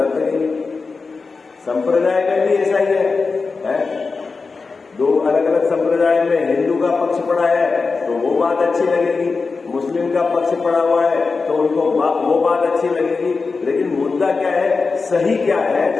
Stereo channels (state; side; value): quieter; right; 4.4 dB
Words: लगेगी। संप्रदाय में भी ऐसा ही है? दो अलग अलग संप्रदाय में हिंदू का पक्ष पड़ा है तो वो बात अच्छी लगेगी, मुस्लिम का पक्ष पड़ा हुआ है तो उनको वो बात अच्छी लगेगी। लेकिन मुद्दा क्या है, सही क्या है,